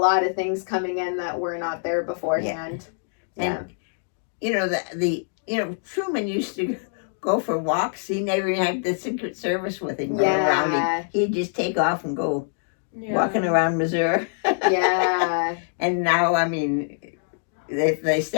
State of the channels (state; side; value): silent; right; digital silence